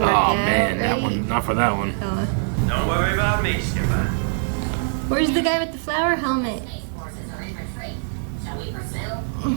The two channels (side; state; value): left; silent; 64 dB below the other